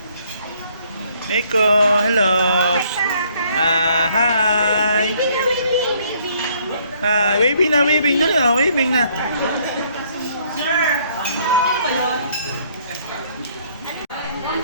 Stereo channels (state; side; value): inverted; both; correlation -0.65